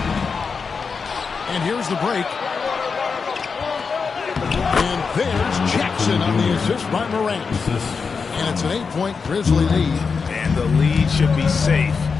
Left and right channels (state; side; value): quieter; right; 5.3 dB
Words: And here's the break. And there's Jackson on the assist by Morant. And it's an 8-point Grizzly lead. And the lead should be safe